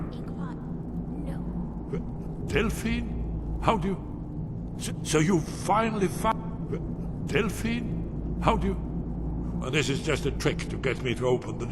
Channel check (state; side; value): identical; both; correlation 1.00